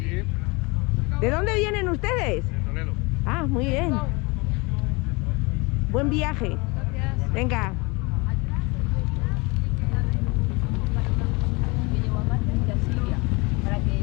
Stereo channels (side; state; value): right; quieter; 26.8 dB